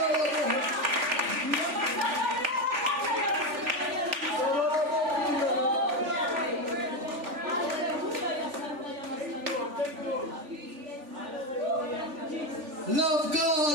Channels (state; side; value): late; left; 3.4 ms